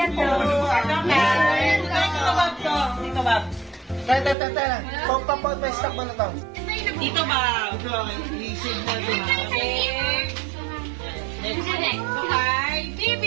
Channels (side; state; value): left; drops out; at 4.4 s